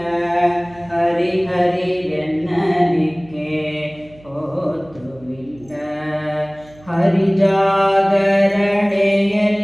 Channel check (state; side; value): noise; right; hum, 25 dB below the sound